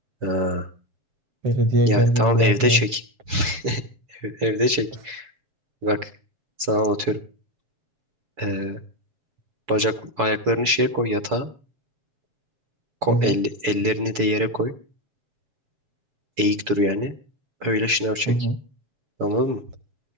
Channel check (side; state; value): left; late; 7.0 ms